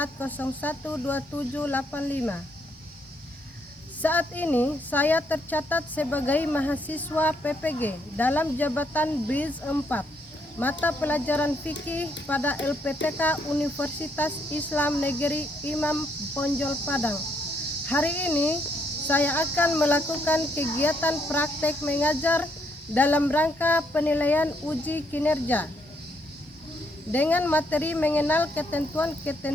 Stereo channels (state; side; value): normal; both; correlation 0.72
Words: Saat ini saya tercatat sebagai mahasiswa PPG dalam jabatan BRIZ 4, mata pelajaran fikih pada LPTK Universitas Islam Negeri Imam Bonjol Padang. Hari ini saya akan melakukan kegiatan praktek mengajar dalam rangka penilaian uji kinerja dengan materi mengenal